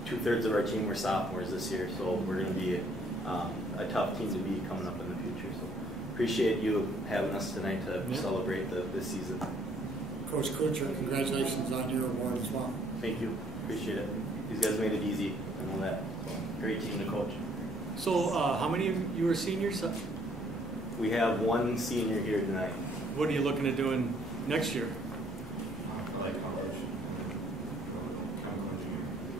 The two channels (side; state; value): both; normal; correlation 0.63